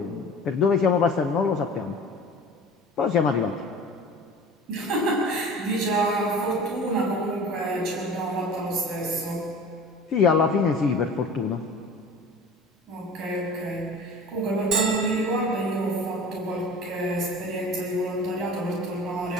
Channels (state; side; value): normal; both; correlation 0.40